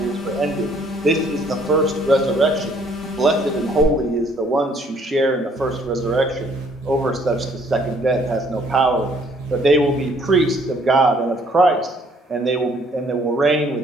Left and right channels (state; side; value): normal; both; correlation 0.62